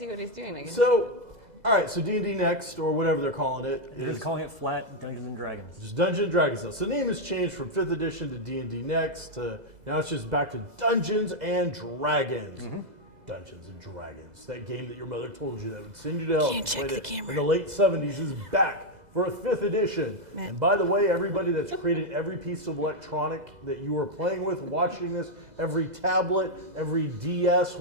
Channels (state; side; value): late; left; 2.0 ms